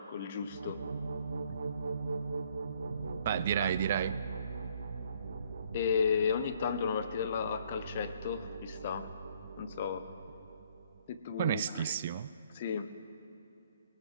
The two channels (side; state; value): both; inverted; correlation -0.63